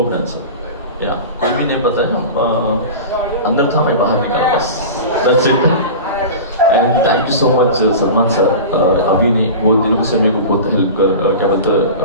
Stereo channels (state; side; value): inverted; both; correlation -0.31